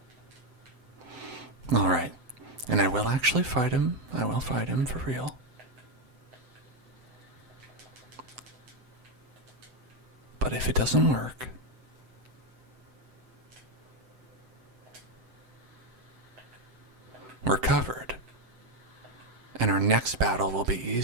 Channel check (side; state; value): left; late; 7.9 ms